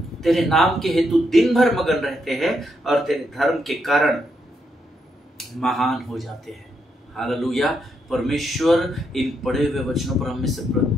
तेरे नाम के हेतु दिन भर मगन रहते हैं और तेरे धर्म के कारण महान हो जाते हैं। हालेलुया। परमेश्वर इन पढ़े हुए वचनों पर हमें से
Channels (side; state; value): both; normal; correlation 0.79